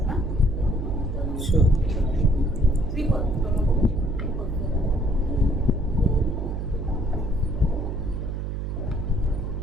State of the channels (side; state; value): right; noise; hum, 3 dB below the sound